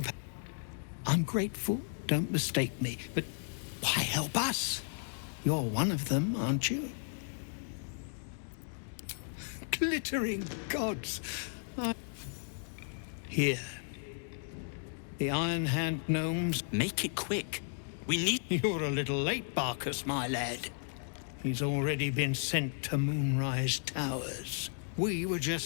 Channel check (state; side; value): silent; right; digital silence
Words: pan. I'm grateful, don't mistake me, but why help us? You're one of them, aren't you? Glittering gods. Here. The Iron Hand gnomes. Make it quick. We need... You're a little late, Barcus, my lad. He's already been sent to Moonrise Towers. We were